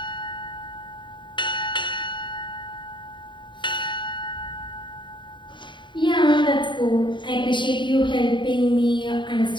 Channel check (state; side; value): late; right; 0.23 ms